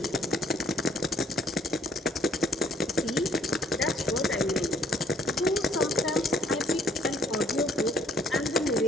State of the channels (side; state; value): both; normal; correlation 0.62